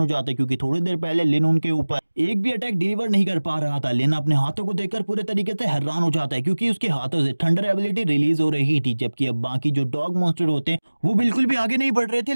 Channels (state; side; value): inverted; both; correlation -1.00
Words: हो जाता है क्योंकि थोड़ी देर पहले लिन उनके ऊपर एक भी अटैक डिलीवर नहीं कर पा रहा था। लिन अपने हाथों को देखकर पूरे तरीके से हैरान हो जाता है क्योंकि उसके हाथों से थंडर एबिलिटी रिलीज हो रही थी, जबकि अब बाकी जो डॉग मॉन्स्टर होते हैं वो बिल्कुल भी आगे नहीं बढ़ रहे थे